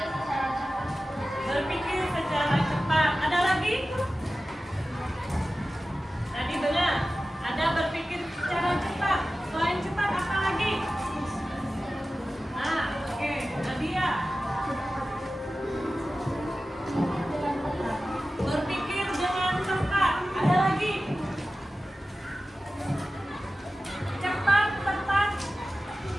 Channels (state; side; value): normal; both; correlation 0.95